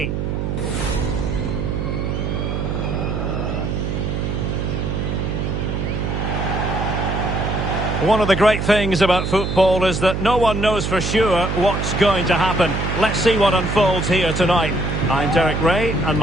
One of the great things about football is that no one knows for sure what's going to happen. Let's see what unfolds here tonight. I'm Derek Ray, and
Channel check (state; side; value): noise; right; hum, 2 dB below the sound